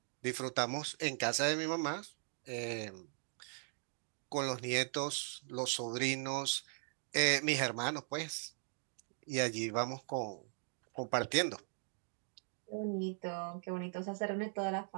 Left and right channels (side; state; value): left; silent; 51 dB below the other